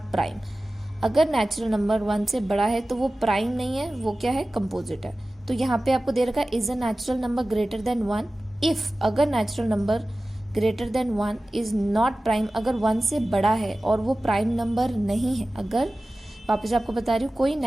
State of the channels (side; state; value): both; normal; correlation 0.96